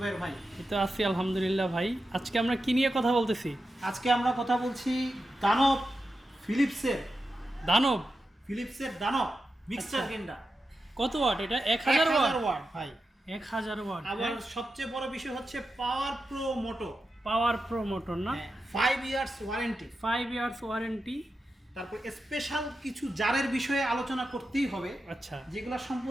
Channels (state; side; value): normal; both; correlation 0.90